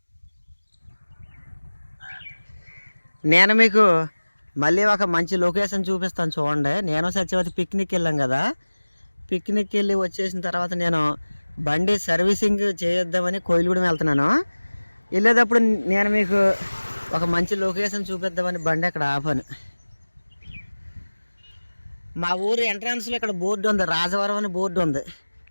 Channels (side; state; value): both; inverted; correlation -1.00